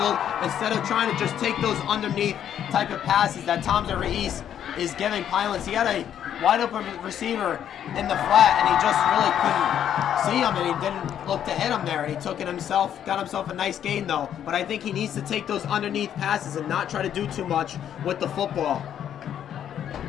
instead of trying to just take those underneath type of passes that Toms over East is giving Pinelands. He had a wide open receiver in the flat, and he just really couldn't see him, and he didn't look to hit him there, and he took it himself, got himself a nice gain though. But I think he needs to take those underneath passes and not try to do too much with the football.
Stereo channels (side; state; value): right; quieter; 9.8 dB